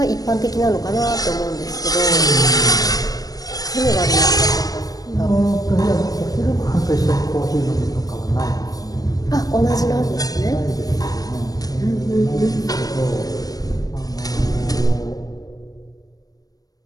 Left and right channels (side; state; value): right; late; 0.18 ms